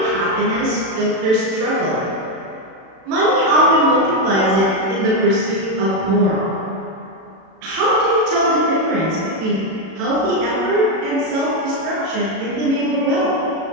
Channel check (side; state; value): left; late; 36 ms